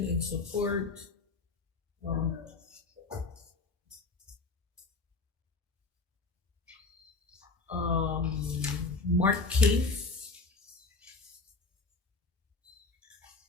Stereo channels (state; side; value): quieter; right; 3.8 dB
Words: in support. Mark Cave.